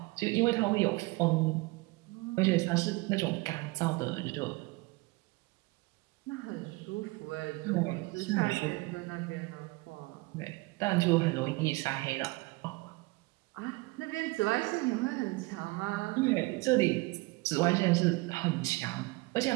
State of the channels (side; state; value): left; quieter; 24.1 dB